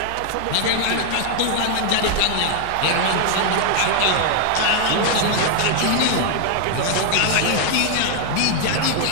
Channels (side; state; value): both; different; correlation 0.00